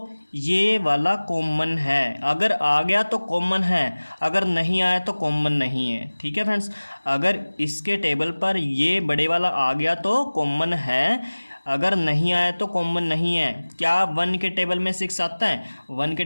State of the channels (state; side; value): inverted; both; correlation -1.00